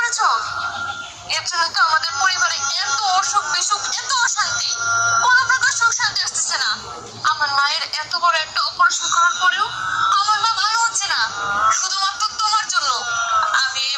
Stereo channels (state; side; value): identical; both; correlation 1.00